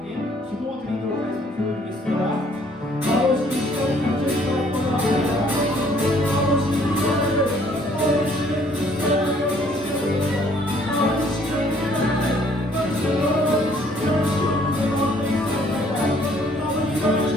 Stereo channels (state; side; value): normal; both; correlation 0.62